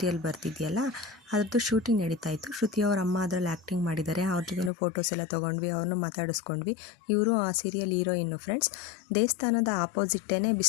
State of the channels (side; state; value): right; drops out; at 4.7 s